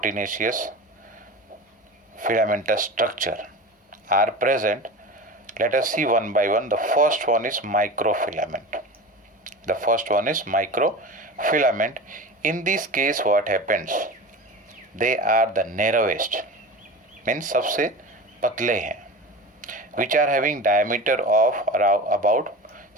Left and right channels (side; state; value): both; normal; correlation 0.30